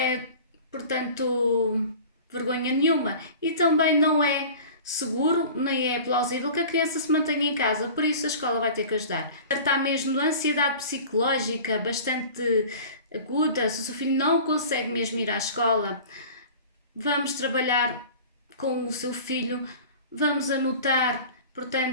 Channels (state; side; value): inverted; both; correlation -0.40